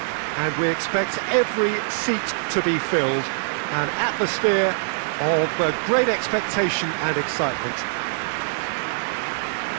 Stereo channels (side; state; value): left; silent; 56 dB below the other